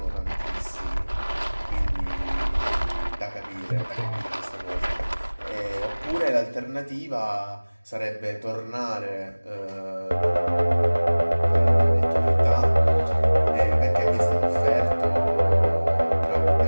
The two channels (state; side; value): inverted; both; correlation -1.00